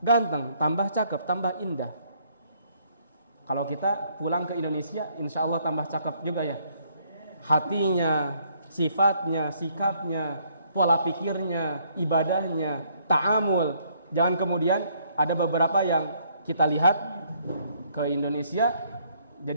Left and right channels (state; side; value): inverted; both; correlation -0.67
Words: tambah cakep, tambah indah. Kalau kita pulang ke Indonesia, insya Allah tambah cakep juga ya. Hatinya, sifatnya, sikapnya, pola pikirnya, ibadahnya, ta'amul. Jangan kemudian ada beberapa yang kita lihat ke Indonesia